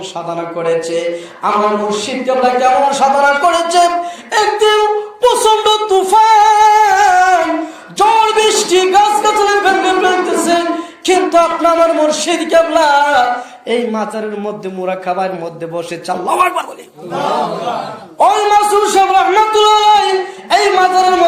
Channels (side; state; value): both; identical; correlation 1.00